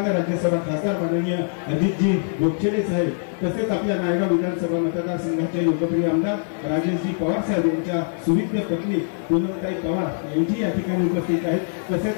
राज्यसभा खासदार माननीय अजितजी गोपछेडे साहेब, तसेच आपल्या नायगाव विधानसभा मतदारसंघाचे लोकप्रिय आमदार राजेशजी पवार साहेब यांच्या सुविद्य पत्नी पूनमताई पवार यांची या ठिकाणी उपस्थित आहेत।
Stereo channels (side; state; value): right; silent; digital silence